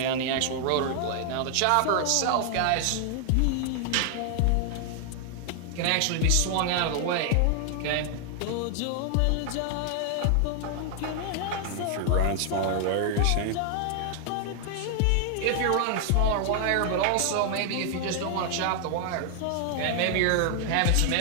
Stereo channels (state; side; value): different; both; correlation 0.00